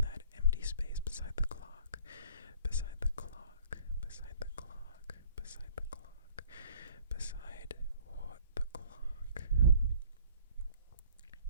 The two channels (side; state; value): both; inverted; correlation -0.53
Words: that empty space beside the clock. Beside the clock. Beside the clock. Beside the clock. Beside what? The clock.